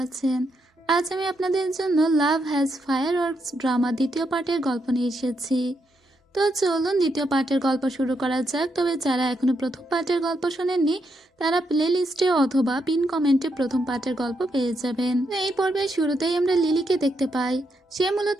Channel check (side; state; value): both; normal; correlation 0.80